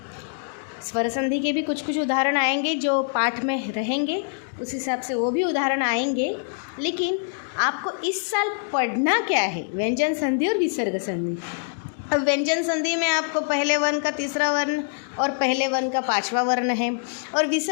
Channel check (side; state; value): right; silent; digital silence